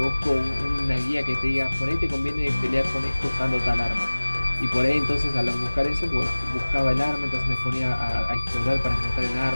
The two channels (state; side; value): inverted; both; correlation -1.00